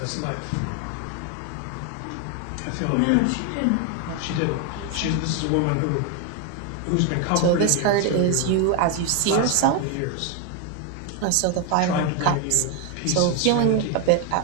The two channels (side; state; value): both; different; correlation 0.01